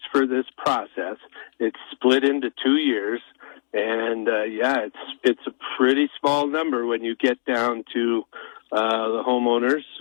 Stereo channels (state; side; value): silent; right; digital silence